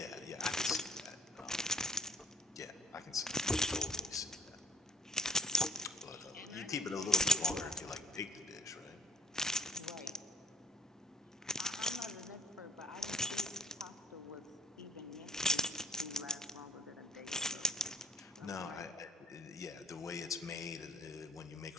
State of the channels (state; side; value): normal; both; correlation 0.56